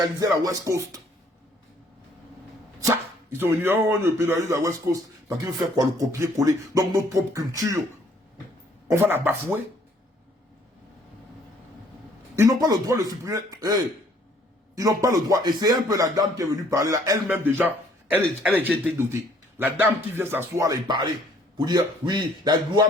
la West Coast. Ça, Ils sont venus, oh, on pénalise la West Coast. Parce qu'ils veulent faire quoi? Le copier-coller. Donc notre propre culture, on va la bafouer. Ils n'ont pas le droit de supprimer. Hey, ils n'ont pas le droit. Et c'est un peu la dame qui est venue parler là. Elle-même déjà, elle a déjà été dotée. La dame qui vient s'asseoir là et parler. Pour dire, oui, la loi,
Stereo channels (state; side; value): normal; both; correlation 0.61